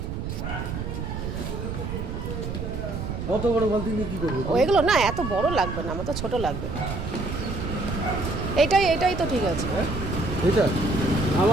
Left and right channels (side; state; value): right; noise; rumble, 5 dB below the sound